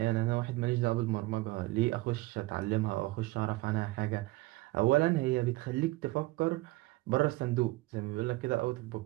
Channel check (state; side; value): quieter; left; 20.3 dB